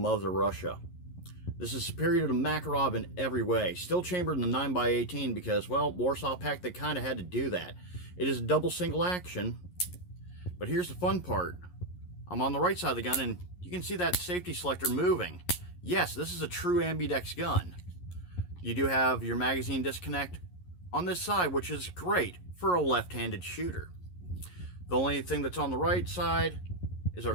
Russia. This is superior to Makarov in every way. Still chambered in the 9x18 because, well, Warsaw Pact, they kind of had to do that. It is a double single action, but here's the fun part. I'm on the right side of the gun, and you can see that safety selector moving. Yes, this is a true ambidex gun. You do have your magazine disconnect on this side, which is great for a left-handed shooter. The only thing that's on the right side is our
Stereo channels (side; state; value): right; late; 11 ms